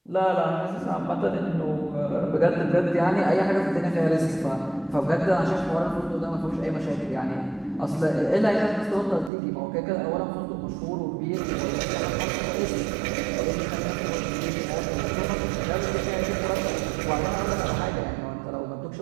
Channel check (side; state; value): left; drops out; at 9.3 s